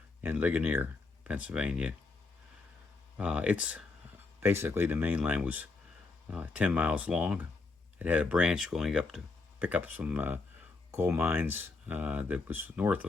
and Ligonier, Pennsylvania. It's basically, the main line was 10 miles long. It had a branch going up to pick up some coal mines that was north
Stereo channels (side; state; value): right; quieter; 3.8 dB